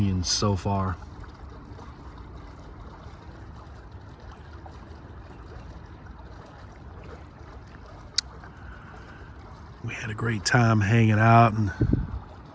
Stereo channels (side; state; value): both; identical; correlation 1.00